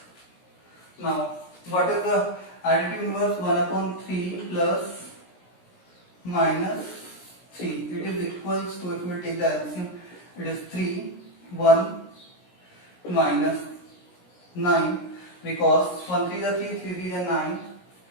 Now what is the additive inverse? 1/3 plus minus 3. It is equals to, if we take the LCM, it is 3, 1 minus 9, because 1 3 is 3, 3 3 is 9.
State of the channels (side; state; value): right; late; 17 ms